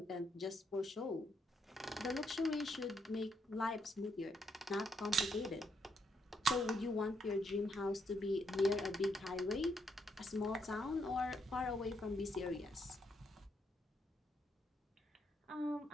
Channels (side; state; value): both; normal; correlation 0.76